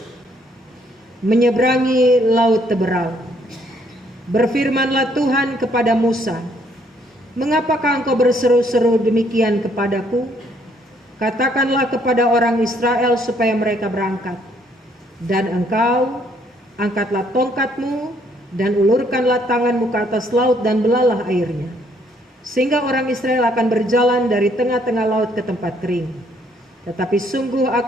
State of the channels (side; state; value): both; normal; correlation 0.67